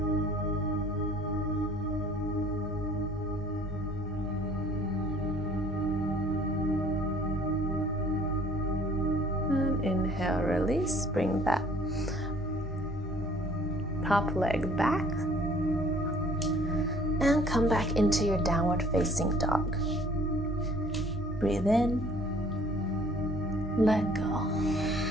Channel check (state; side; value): normal; both; correlation 0.54